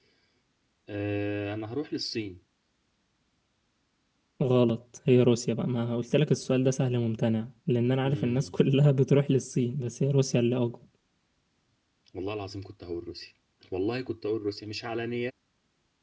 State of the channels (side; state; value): both; identical; correlation 1.00